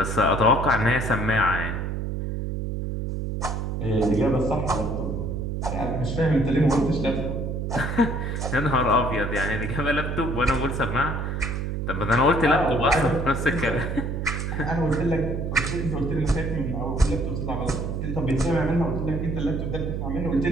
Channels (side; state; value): right; noise; hum, 3 dB below the sound